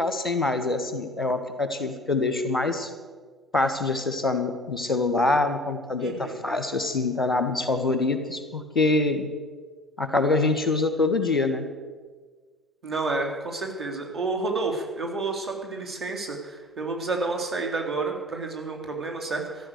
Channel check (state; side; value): normal; both; correlation 0.43